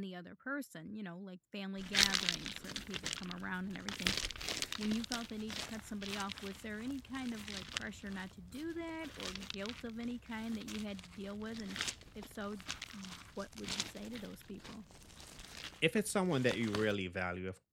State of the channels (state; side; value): identical; both; correlation 1.00